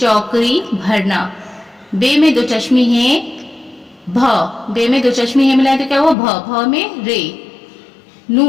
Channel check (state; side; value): drops out; right; at 6.2 s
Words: भरना, बे में 2 चश्मी है, भ, बे में 2 चश्मी है मिलाए तो क्या हुआ, भ, भ में रे। नू